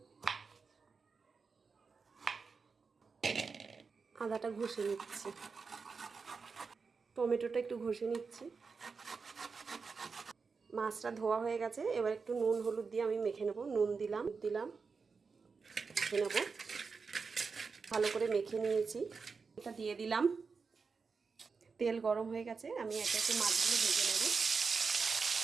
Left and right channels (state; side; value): quieter; left; 5.0 dB